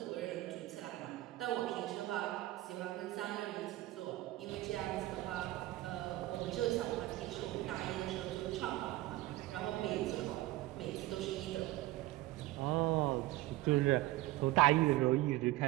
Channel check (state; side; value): quieter; left; 17.6 dB